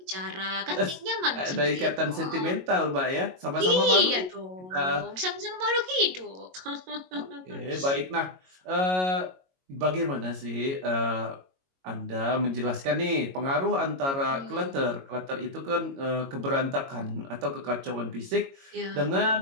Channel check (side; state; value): left; late; 22 ms